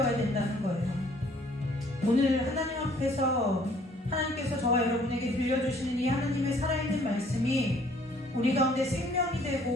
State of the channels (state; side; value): normal; both; correlation 0.59